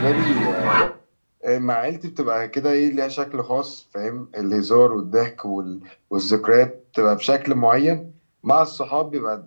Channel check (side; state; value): both; inverted; correlation -1.00